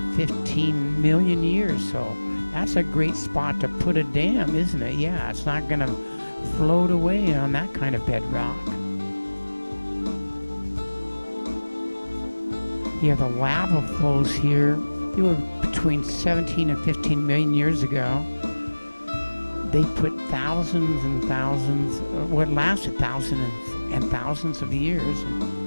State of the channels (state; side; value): inverted; both; correlation -1.00